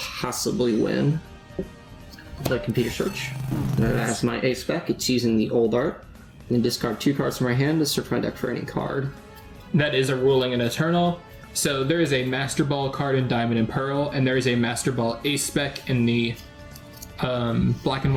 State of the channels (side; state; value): both; identical; correlation 1.00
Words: win the computer search. As my ace spec, it's using the old art. And discard 2 cards from my hand to search my deck for any card. That is a ruling in Eternal. So there is a Master Ball card in Diamond and Pearl, and there is a Master Ball ace spec in the Black and